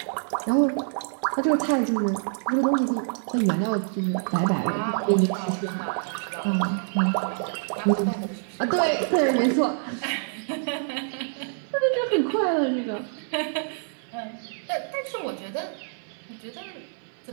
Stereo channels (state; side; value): silent; left; digital silence